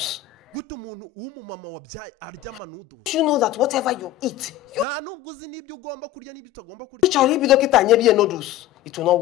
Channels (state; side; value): quieter; right; 12.6 dB